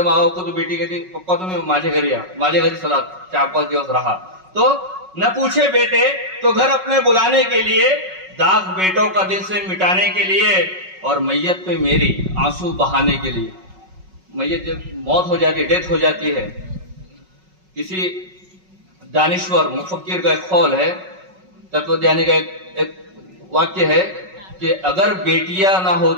माँ बाप को, तो बेटी कहती पप्पा तुम्हें माझे घरी सलाह 4-5 दिवस रहा। तो न पूछे बेटे तो घर अपने बुलाने के लिए, दाग बेटों का दिल से मिटाने के लिए, और मैयत पे मेरी आंसू बहाने के लिए। मैयत जब मौत हो जाती है, डेथ हो जाती है, किसी दानिश्वर मुफक्किर का एक कौल है, तत्वज्ञानी का एक वाक्य है कि अगर बेटियां ना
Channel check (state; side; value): late; left; 5.4 ms